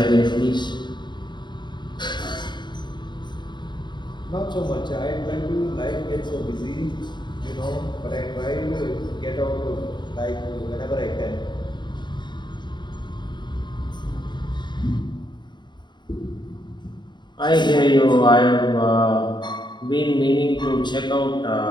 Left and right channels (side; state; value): right; late; 0.22 ms